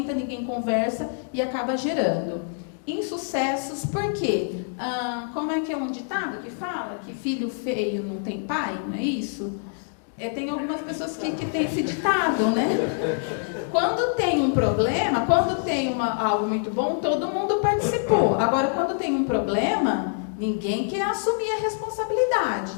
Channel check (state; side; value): silent; right; digital silence